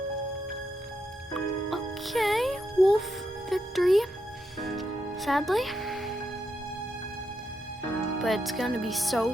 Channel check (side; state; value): both; normal; correlation 0.82